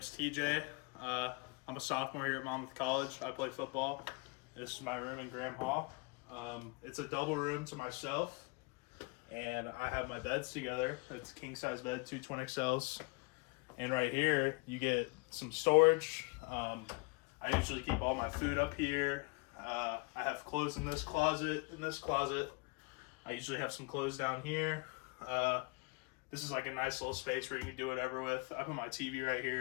TJ. I'm a sophomore here at Monmouth College. I play football. This is my room in Graham Hall. It's a double room to myself, and I have my beds together. It's a king-size bed, two twin XLs. And right here, you get some storage. I usually keep all my food up here. I have clothes in this closet. I usually have some clothes down here. This is like a nice little space where you can do whatever with. I put my TV right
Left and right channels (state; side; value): quieter; right; 29.4 dB